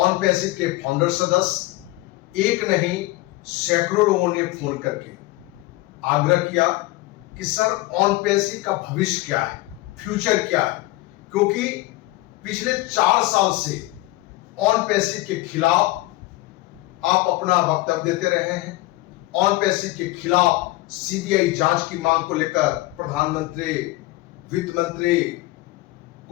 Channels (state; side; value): quieter; right; 19.1 dB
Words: पैसिव के फाउंडर सदस्य एक नहीं सैकड़ों लोगों ने फोन करके आग्रह किया कि सर ऑन पैसिव का भविष्य क्या है, फ्यूचर क्या है, क्योंकि पिछले 4 साल से ऑन पैसिव के खिलाफ आप अपना वक्तव्य देते रहे हैं। ऑन पैसिव के खिलाफ सीबीआई जांच की मांग को लेकर प्रधानमंत्री, वित्त मंत्री